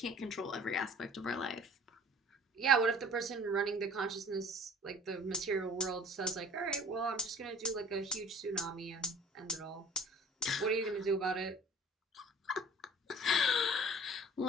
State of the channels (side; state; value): both; normal; correlation 0.47